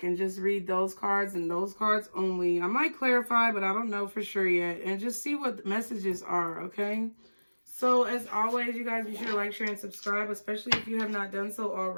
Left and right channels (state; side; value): inverted; both; correlation -1.00